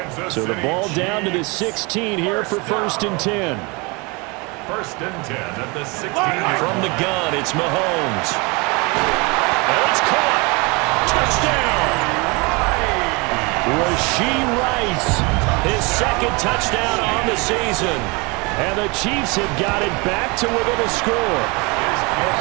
So the ball down to the 16 here for 1st and 10. 1st and 10 at the 16. From the gun, it's Mahomes. And it's caught. Touchdown. Rashee Rice, his 2nd touchdown on the season. And the Chiefs have got it back to within a score.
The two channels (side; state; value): left; quieter; 28.0 dB